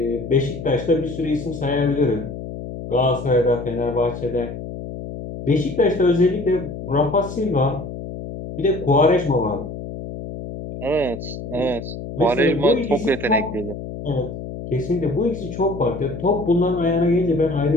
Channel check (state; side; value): noise; left; hum, 9 dB below the sound